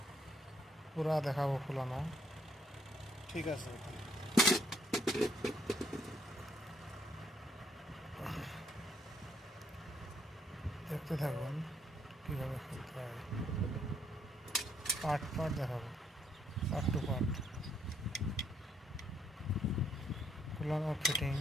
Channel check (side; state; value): both; normal; correlation 0.71